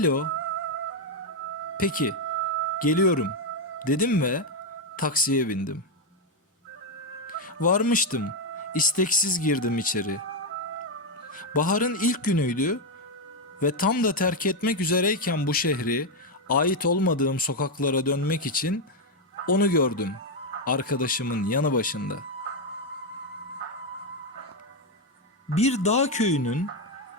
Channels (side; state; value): both; normal; correlation 0.03